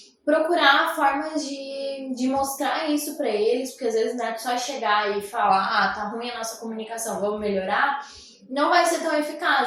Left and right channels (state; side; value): identical; both; correlation 1.00